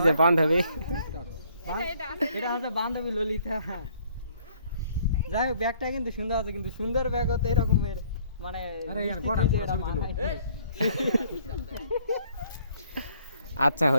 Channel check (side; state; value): both; inverted; correlation -0.62